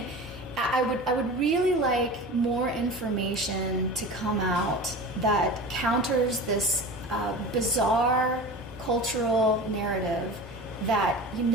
I would really like more information to come out that counters this bizarre cultural narrative that you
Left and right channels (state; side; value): normal; both; correlation 0.34